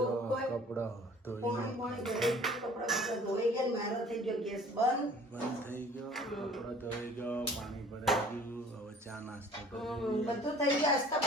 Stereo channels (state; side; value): normal; both; correlation 0.51